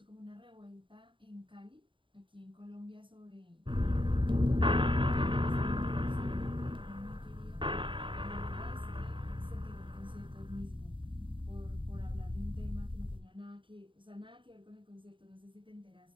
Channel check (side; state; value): left; late; 0.24 ms